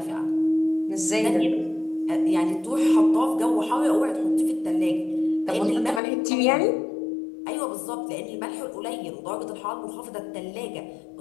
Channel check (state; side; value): drops out; right; at 6.0 s